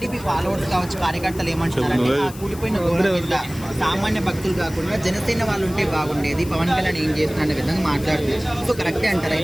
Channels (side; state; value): left; noise; hiss, 17 dB below the sound